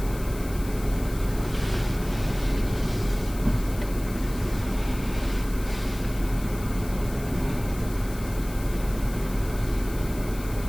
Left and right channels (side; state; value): left; noise; hiss, 16 dB below the sound